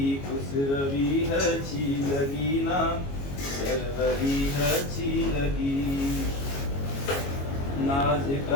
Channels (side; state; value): right; late; 22 ms